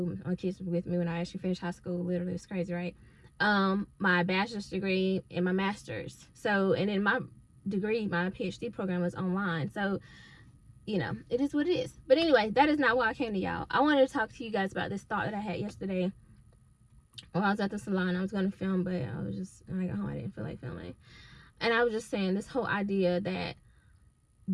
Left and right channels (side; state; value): both; identical; correlation 1.00